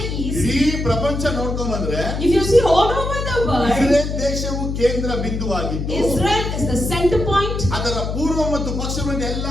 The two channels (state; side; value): noise; left; hum, 3 dB below the sound